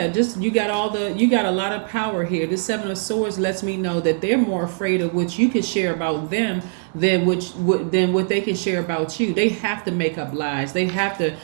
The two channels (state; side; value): silent; left; 65 dB below the other